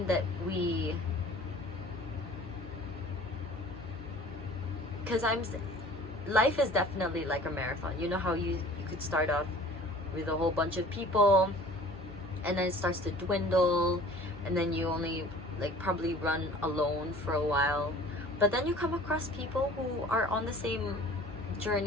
that life is definitely like a marathon. You know how you could start off with a whole bunch of people, and then it starts to dwindle, and then you only probably run alone for a while, but then you come across people who are on the same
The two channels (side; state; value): both; normal; correlation 0.47